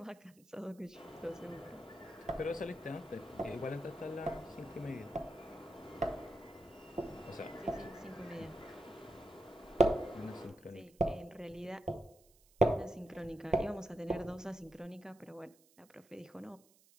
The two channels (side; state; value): right; noise; hiss, 28 dB below the sound